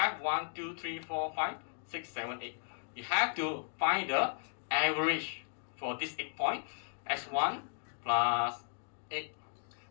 1, 2, 3, 4, 5, 6, 7, 8. You have to find the average for this 8 point. x1 plus 8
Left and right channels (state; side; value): silent; right; digital silence